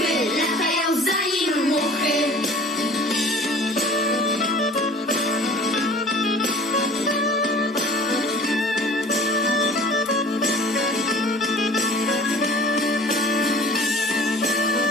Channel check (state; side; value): normal; both; correlation 0.46